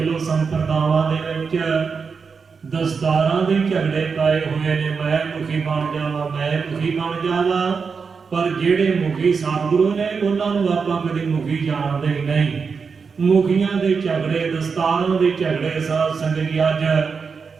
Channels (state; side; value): quieter; left; 5.4 dB